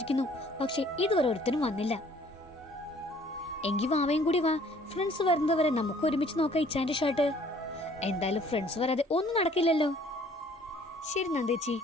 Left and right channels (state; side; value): normal; both; correlation 0.57